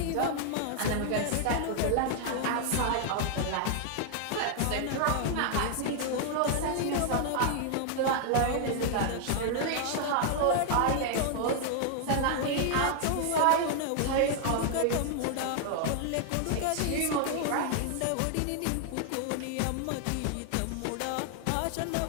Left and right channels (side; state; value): both; different; correlation 0.00